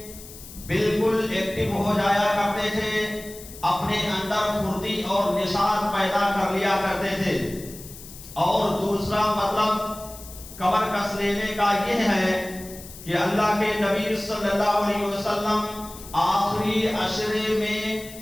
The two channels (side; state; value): left; noise; hiss, 16 dB below the sound